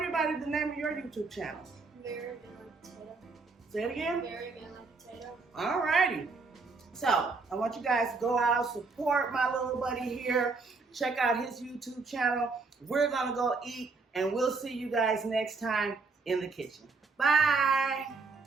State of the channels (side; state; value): left; quieter; 4.2 dB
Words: the name of your YouTube channel. Very good potato. Say it again. Very good potato. Alrighty. So I want you guys to go out, support my little buddy here. Check out his YouTube channel. We're gonna go eat, and we'll see you guys next time in the kitchen. Bye.